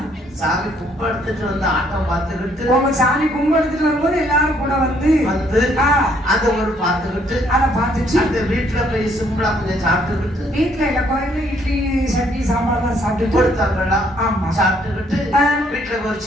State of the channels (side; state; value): both; normal; correlation 0.67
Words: சாமி கும்பிடுத்துட்டு வந்து ஆட்டம் பார்த்துக்கிட்டு உங்க சாமி கும்பிடுத்துட்டு வரும்போது எல்லாரும் கூட வந்து அத ஒரு பார்த்துக்கிட்டு அதை பார்த்துட்டு அந்த வீட்டுல போய் சிம்பிளா கொஞ்சம் சாப்பிட்டுக்கிட்டு வீட்டுல இல்ல கோயில இட்லி சட்னி சாம்பார் எல்லாம் சாப்பிட்டு கொடுத்தாங்களா ஆமா சாப்பிட்டுக்கிட்டு வீட்டுல ஒரு